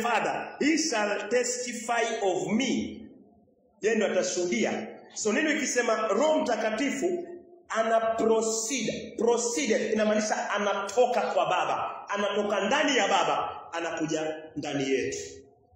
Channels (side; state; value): both; identical; correlation 1.00